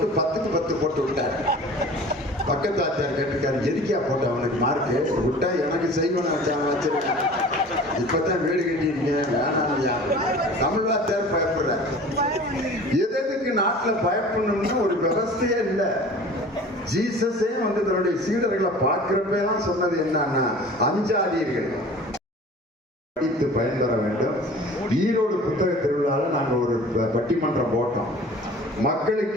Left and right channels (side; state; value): both; normal; correlation 0.43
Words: 10க்கு 10 போட்டு விட்டார். பக்கத்து ஆச்சார் கேட்டிருக்காரு, எதுக்கியா போட்ட அவனுக்கு மார்க்கு விட்டா? எனக்கு செய்வன வச்சிருக்கேன், இப்பதான் வீடு கட்டியிருக்கேன், வேணாம். தமிழ் வாத்தியார் பயப்படுறார். எதுக்கு நாட்டில் பயப்படணும்னு ஒரு விவசாயே இல்லை. ஜீசஸே வந்து தன்னுடைய சீடர்களை பார்க்கிறப்பெல்லாம் சொன்னது என்னன்னா, அஞ்சாதீர்கள், படித்து பயன்பெற வேண்டும். ஈரோடு புத்தக திருவிழாவில் நாங்கள் ஒரு பட்டிமன்றம் போட்டோம்.